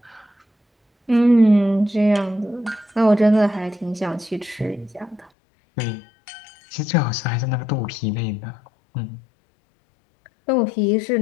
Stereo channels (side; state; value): right; drops out; at 5.3 s